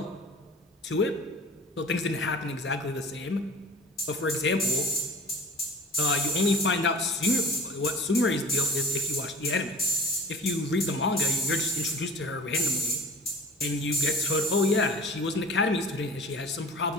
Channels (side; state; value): both; normal; correlation 0.45